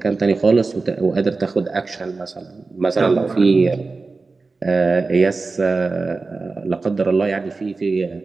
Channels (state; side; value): quieter; left; 3.9 dB